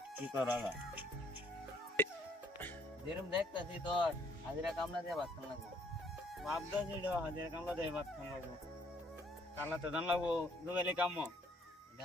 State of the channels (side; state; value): both; normal; correlation 0.64